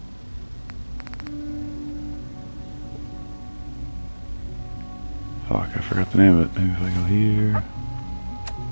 Fuck, I forgot the name of it. Maybe if I go here.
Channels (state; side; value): inverted; both; correlation -1.00